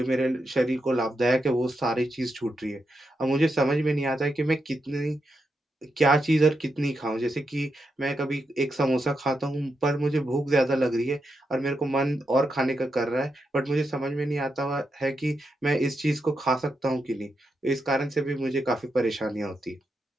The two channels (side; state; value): both; normal; correlation 0.85